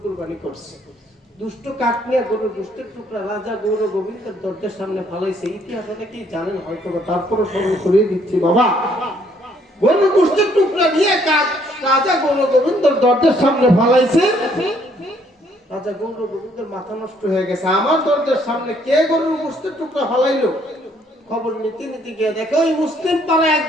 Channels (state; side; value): normal; both; correlation 0.66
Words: কুরবানি করছে। দুষ্ট কাক নিয়ে গরুর গোশতের টুকরা রাজা গৌর গোবিন্দের দরজার সামনে ফালাইছে। ইতিহাস অনেকেই জানেন হয়তো, তারপরে স্মরণ করিয়ে দিচ্ছি। বাবা, গরুর গোশতের টুকরা নিয়ে কাক রাজা গৌর গোবিন্দের দরজার সামনে ফালাইছে। রাজা গৌর গোবিন্দের মাথা নষ্ট হয়ে গেছে, আমার দরজার সামনে কে গরুর গোশতের টুকরা ফালাইলো? খবর নিতে নিতে গিয়ে দেখে ওই মুসলিম পাড়ায়